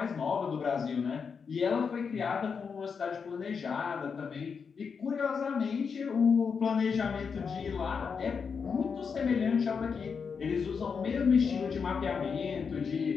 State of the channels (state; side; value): quieter; right; 5.9 dB